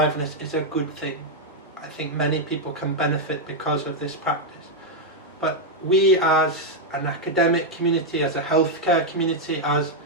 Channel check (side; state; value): both; normal; correlation -0.01